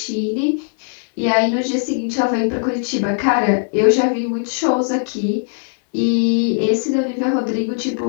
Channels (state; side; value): silent; right; 66 dB below the other